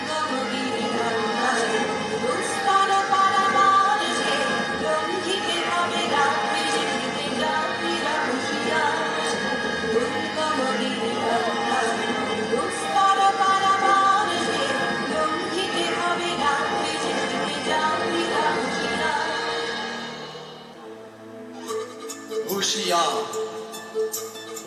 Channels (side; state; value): both; identical; correlation 1.00